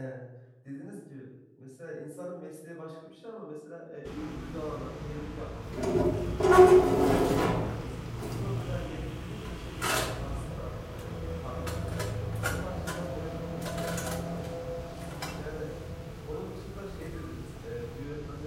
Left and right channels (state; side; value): identical; both; correlation 1.00